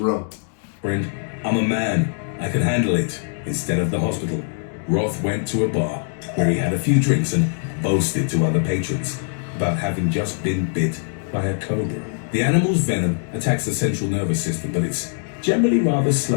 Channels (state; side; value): silent; right; digital silence